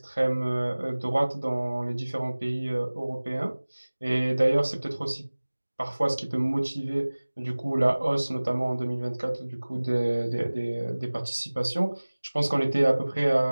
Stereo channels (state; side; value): inverted; both; correlation -1.00